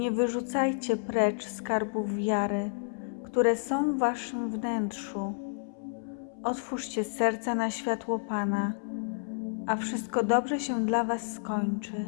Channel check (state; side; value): silent; right; 58 dB below the other